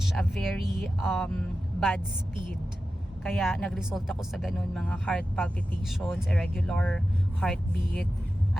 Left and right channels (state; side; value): normal; both; correlation 0.93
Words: a very bad speed. Kaya nag-result ako sa ganun, mga heart palpitations, irregular heartbeat.